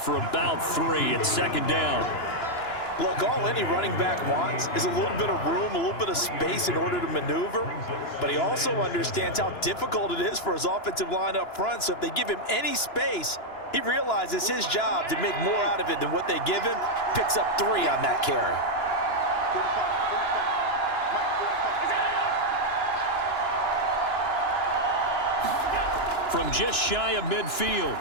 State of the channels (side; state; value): right; late; 2.9 ms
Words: for about 3 at 2nd down. Look, all any running back wants is a little bit of room, a little bit of space in order to maneuver. But he also understands how difficult it is for his offensive line up front. So if they give him any space, he realizes his job to make more out of it than what they give him. Picks up 3 on that carry. From just shy of midfield,